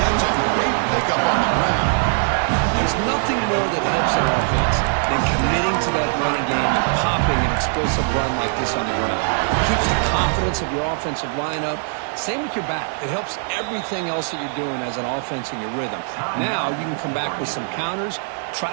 a great pickup on the ground. There's nothing more that helps an offense than committing to that running game and popping an explosive run like this on the ground. It keeps the confidence of your offensive lineup. Same with your back. It helps everything else that you're doing as an offense in your rhythm. Now you can come back with some counters,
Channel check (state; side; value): silent; left; 63 dB below the other